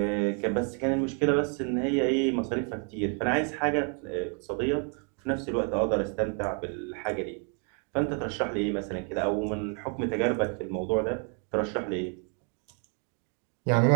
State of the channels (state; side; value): quieter; left; 39.6 dB